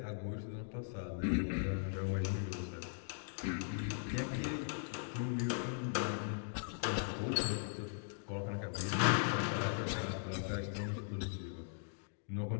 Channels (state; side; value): silent; right; digital silence